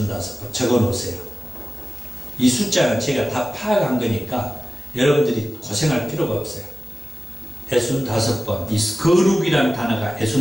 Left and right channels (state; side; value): normal; both; correlation 0.95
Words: 적어놓으세요. 이 숫자는 제가 다 파악한 거니까 여러분들이 고생할 필요가 없어요. 65번, 이 거룩이라는 단어가